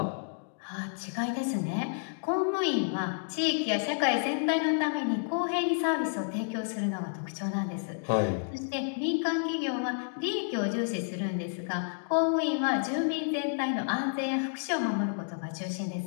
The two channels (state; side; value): silent; right; digital silence